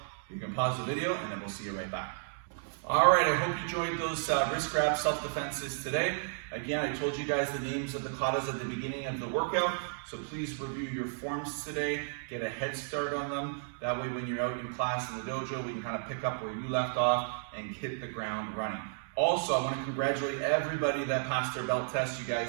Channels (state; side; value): silent; left; digital silence